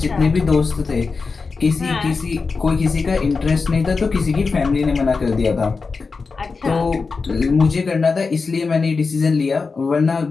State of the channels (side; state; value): right; quieter; 4.5 dB